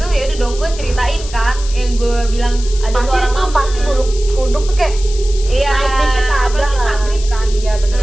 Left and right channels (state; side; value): noise; left; hiss, 14 dB below the sound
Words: ya udah dong, gue ceritain kan yang gue bilang ada Pasti suara tuh mama. pasti kuduk tuh kayak Iya, naik dikit ada apalagi lah. maghrib kan. Iya, bener